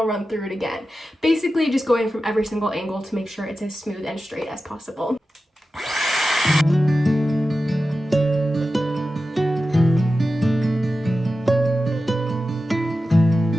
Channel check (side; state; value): both; normal; correlation 0.93